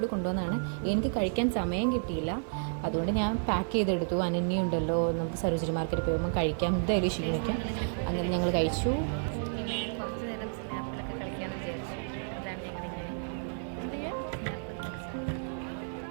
കൂടി കൊണ്ടുവന്നതാണ്. എനിക്ക് കഴിക്കാൻ സമയം കിട്ടിയില്ല, അതുകൊണ്ട് ഞാൻ പാക്ക് ചെയ്തെടുത്തു. അനന്യുണ്ടല്ലോ, നമുക്ക് സരോജിനി മാർക്കറ്റിൽ പോകുമ്പോൾ കഴിക്കാം, എന്തായാലും ക്ഷീണിക്കാം. അങ്ങനെ ഞങ്ങൾ കഴിച്ചു. കുറച്ച് നേരം സ്നാപ്പിലൊക്കെ കളിക്കാമെന്ന് വിചാരിച്ചു. അതാണ് ഞങ്ങളിങ്ങനെ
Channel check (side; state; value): left; silent; digital silence